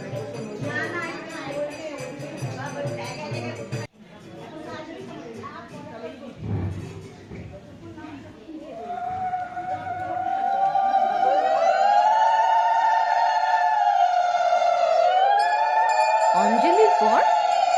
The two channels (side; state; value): both; identical; correlation 1.00